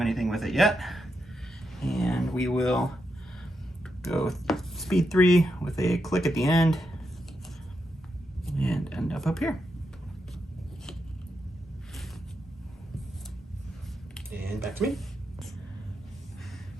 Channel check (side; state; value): both; normal; correlation 0.84